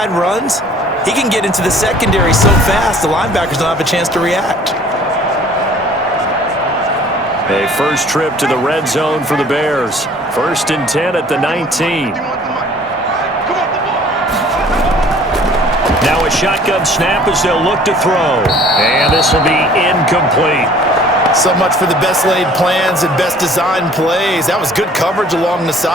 runs, he can get into the secondary so fast the linebackers don't have a chance to react. A first trip to the red zone for the Bears. 1st and 10 at the 19. Now a shotgun snap as they'll look to throw. And this will be incomplete. So much for the best laid plans and best designed plays. That was good coverage along the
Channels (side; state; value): both; normal; correlation 0.52